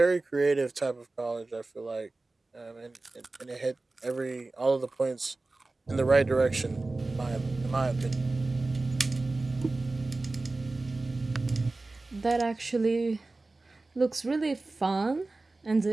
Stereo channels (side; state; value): left; quieter; 3.2 dB